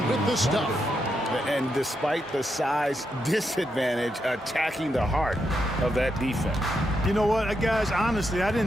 with the stuff. And despite the size disadvantage, attacking the heart of that defense. You know what, guys, honestly, I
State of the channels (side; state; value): both; normal; correlation 0.83